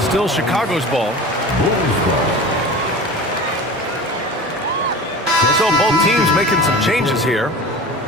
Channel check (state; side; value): normal; both; correlation 0.35